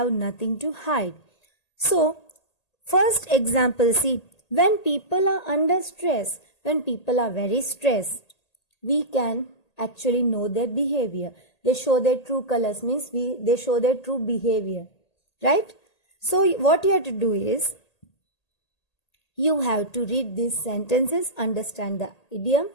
nothing to hide. So, first example, see, when people are under stress, when people are very stressed, we can actually know their behavior. They show their true colors, means they show their true behavior, right? So, what you have to do is, you have to read these sentences, understand the idiom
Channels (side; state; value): right; late; 1.8 ms